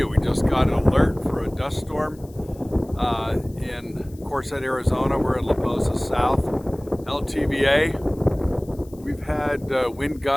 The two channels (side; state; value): left; noise; hiss, 27 dB below the sound